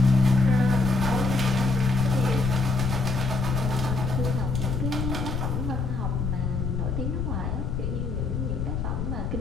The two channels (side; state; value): left; noise; rumble, 2 dB below the sound